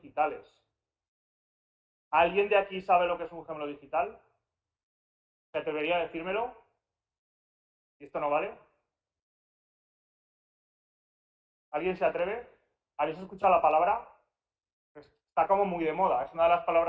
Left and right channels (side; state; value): both; identical; correlation 1.00